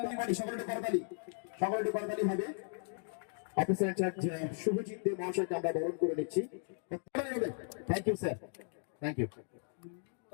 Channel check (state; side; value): silent; right; 53 dB below the other